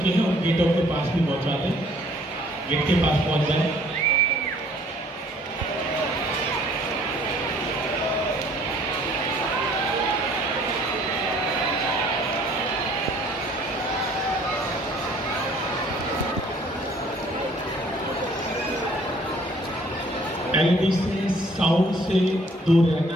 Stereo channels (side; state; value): both; normal; correlation 0.58